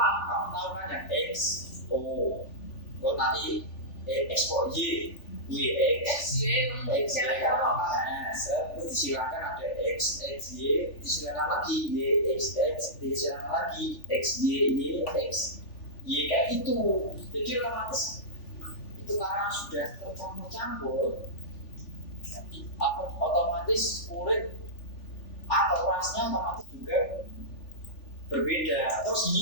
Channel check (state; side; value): late; right; 3.4 ms